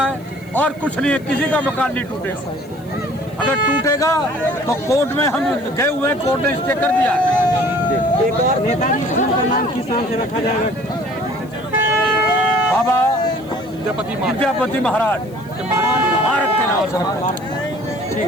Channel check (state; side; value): noise; left; hiss, 28 dB below the sound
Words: है और कुछ नहीं है। किसी का मकान नहीं टूटेगा। अगर टूटेगा तो कोर्ट में हम गए हुए हैं, कोर्ट ने स्टे कर दिया है। एक और नेताजी स्कूल का नाम किस नाम से रखा जाएगा? बाबा विद्यापति महाराज भारत के नाम से।